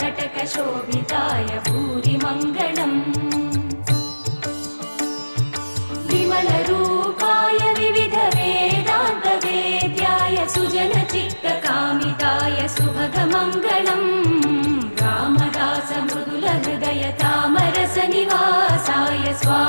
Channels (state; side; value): inverted; both; correlation -1.00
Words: भूरिमङ्गलम् विमलरूपाय विविधवेदान्तवेद्याय सुजनचित्तकामिताय सुभगमङ्गलम् रामदासमृदुलहृदय तामरसनिवासाय